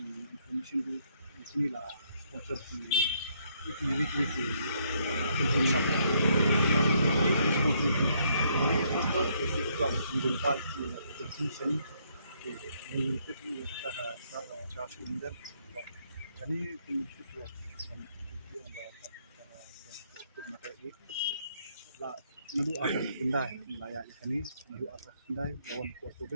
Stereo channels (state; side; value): inverted; both; correlation -0.71